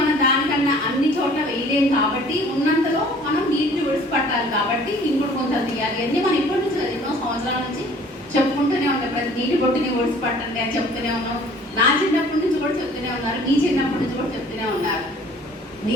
దానికన్నా అన్ని చోట్ల వేయలేం కాబట్టి ఉన్నంతలో మనం నీటిని విడిచిపట్టాలి. కాబట్టి ఇంకోటి కొంత తీయాలి. అన్నీ మనం ఇప్పటి నుంచి ఎన్నో సంవత్సరాల నుంచి చెప్పుకుంటూనే ఉంటాం. ప్రతి నీటి బొట్టుని విడిచిపట్టండి అని చెప్తూనే ఉన్నాం. నా చిన్నప్పటి నుంచి కూడా చెప్తూనే ఉన్నారు, మీ చిన్నప్పటి నుంచి కూడా చెప్తూనే ఉన్నారు.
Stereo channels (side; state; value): both; normal; correlation 0.52